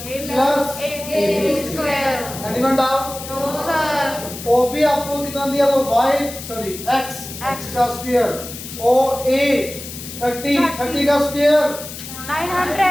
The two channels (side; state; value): left; noise; hiss, 11 dB below the sound